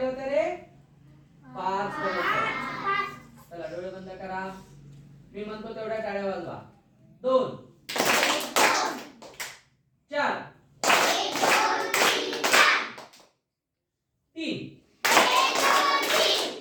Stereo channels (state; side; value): identical; both; correlation 1.00